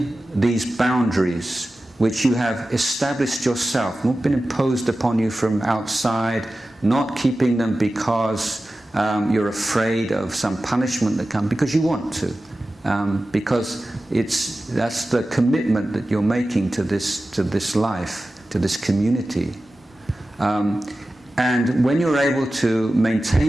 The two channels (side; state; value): both; normal; correlation 0.95